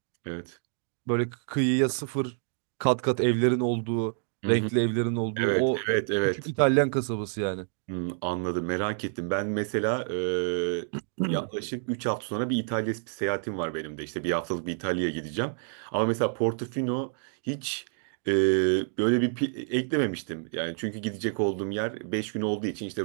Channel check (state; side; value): silent; left; 59 dB below the other